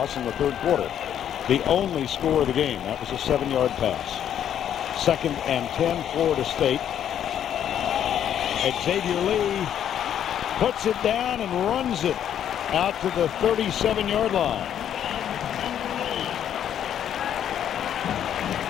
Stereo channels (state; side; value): quieter; right; 9.9 dB